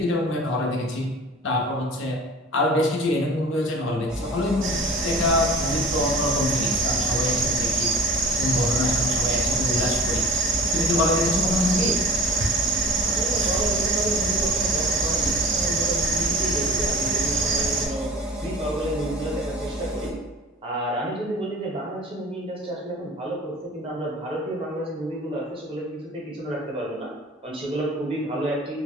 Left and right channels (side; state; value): both; normal; correlation 0.42